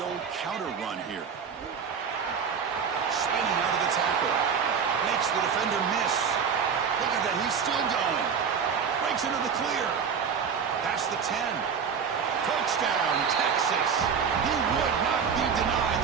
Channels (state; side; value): quieter; left; 6.6 dB